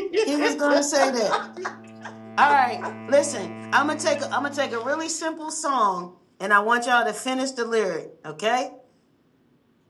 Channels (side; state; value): both; identical; correlation 1.00